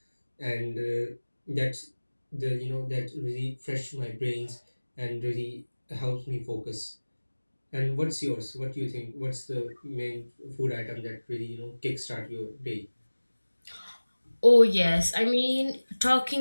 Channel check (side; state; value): both; inverted; correlation -1.00